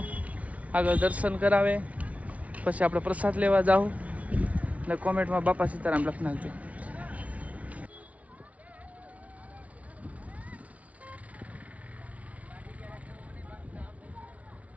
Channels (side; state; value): left; late; 0.067 ms